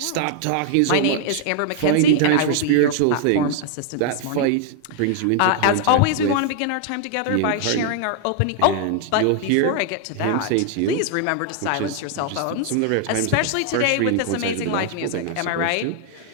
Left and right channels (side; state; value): both; different; correlation 0.00